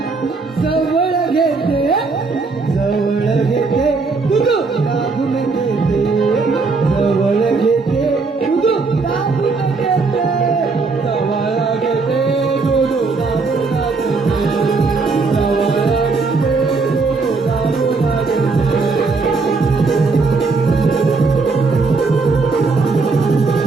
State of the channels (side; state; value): left; quieter; 4.2 dB